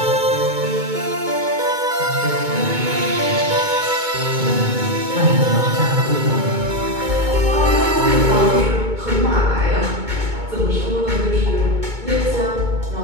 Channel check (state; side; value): late; left; 2.2 ms